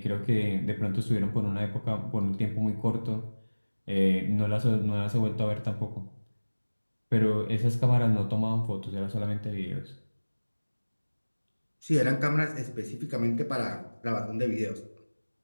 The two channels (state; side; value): inverted; both; correlation -1.00